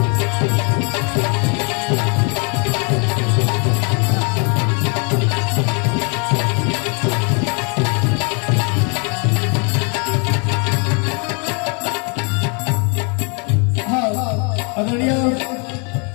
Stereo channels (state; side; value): quieter; right; 35.6 dB